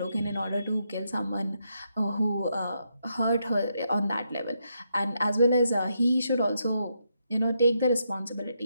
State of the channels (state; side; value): inverted; both; correlation -0.80